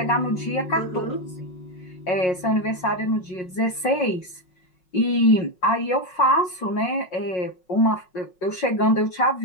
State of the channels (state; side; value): late; right; 5.5 ms